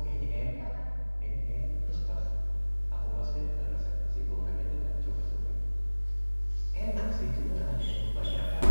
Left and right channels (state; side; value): inverted; both; correlation -1.00